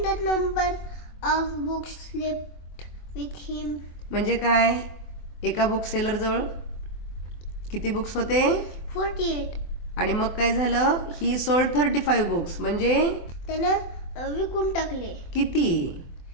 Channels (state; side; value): late; right; 24 ms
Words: the number of books left with him. म्हणजे काय. एका बुक सेलर जवळ किती बुक्स होते. 48. आणि मग काय झालं. ही सोल्ड 35 बुक्स म्हणजे त्यानं विकून टाकले. किती.